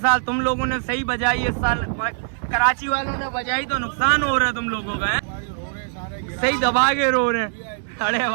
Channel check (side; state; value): left; silent; digital silence